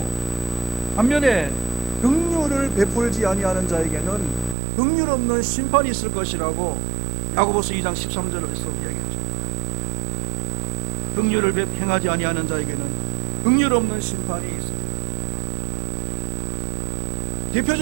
반면에 긍휼을 베풀지 아니하는 자에게는 긍휼 없는 심판이 있을 것이라고 야고보서 2장 13절에서 이야기했죠. 긍휼을 행하지 아니하는 자에게는 긍휼 없는 심판이 있습니다.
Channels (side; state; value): left; drops out; at 4.5 s